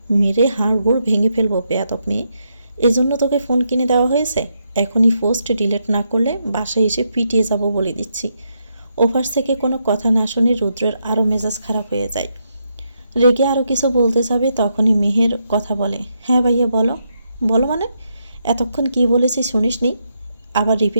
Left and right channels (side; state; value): both; inverted; correlation -0.80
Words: মেরে হাড় গোড় ভেঙে ফেলবো বেয়াদব মেয়ে। এজন্য তোকে ফোন কিনে দেওয়া হয়েছে? এখনই পোস্ট ডিলিট না করলে বাসায় এসে পিটিয়ে যাব বলে দিচ্ছি। ওপাশ থেকে কোনো কথা না শুনে রুদ্রের আরও মেজাজ খারাপ হয়ে যায়। রেগে আরও কিছু বলতে যাবে, তখনই মেহের কথা বলে, হ্যাঁ ভাইয়া বলো। বলো মানে? এতক্ষণ কি বলেছি শুনিসনি? আবার